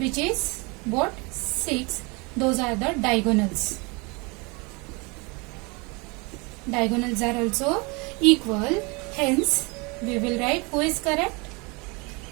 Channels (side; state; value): left; quieter; 28.6 dB